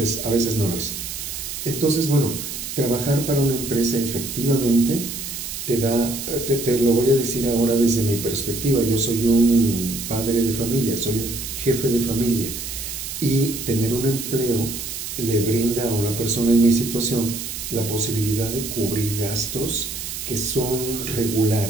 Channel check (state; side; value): noise; right; hiss, 7 dB below the sound